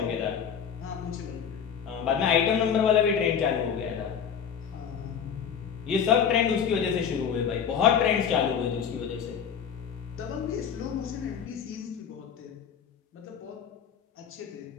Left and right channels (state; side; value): quieter; right; 7.6 dB